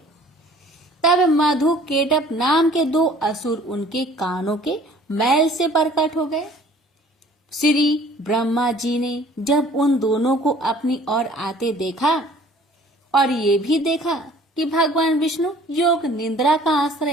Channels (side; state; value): both; normal; correlation 0.53